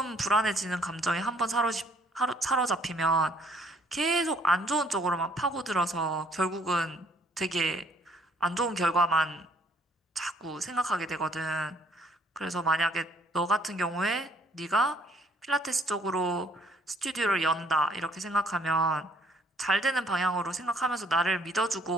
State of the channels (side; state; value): both; normal; correlation 0.63